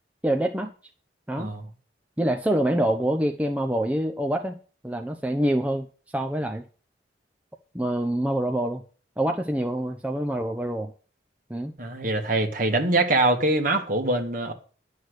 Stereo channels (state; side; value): normal; both; correlation 0.57